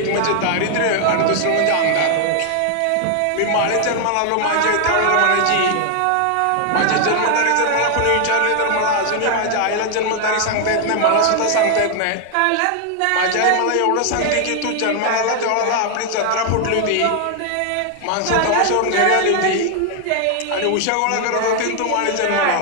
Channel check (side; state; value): both; different; correlation 0.00